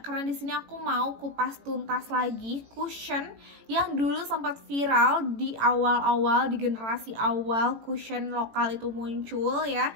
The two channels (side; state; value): left; late; 18 ms